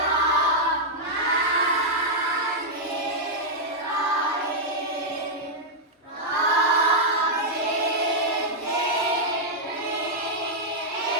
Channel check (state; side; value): normal; both; correlation -0.05